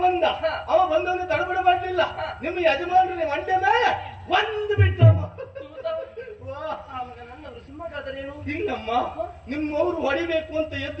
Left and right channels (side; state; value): both; identical; correlation 1.00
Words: ಬಂದ. ಅವ ಬಂದವನು ತಡಬಡ ಮಾಡಲಿಲ್ಲ. ನಿಮ್ಮ ಯಜಮಾನರು ಮಂಡ್ಯ ಮೇಲೆ ಒಂದು ಬಿಟ್ಟಮ್ಮ. ನನ್ನವರು ಸಿಂಹಗಾದರೇನು ಹಿಂಗಮ್ಮ ನಿಮ್ಮವರು ಹೊಡಿಬೇಕು ಅಂತ